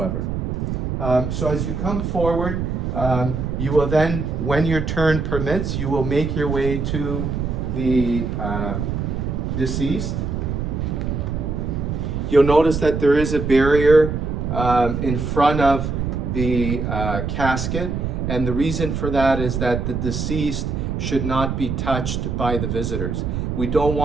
So as you come forward, you will then, when your turn permits, you will make your way to the deceased. You'll notice that there is a barrier in front of the casket, and the reason for that is that the deceased should not be touched by the visitors. We don't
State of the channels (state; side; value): noise; right; rumble, 2 dB below the sound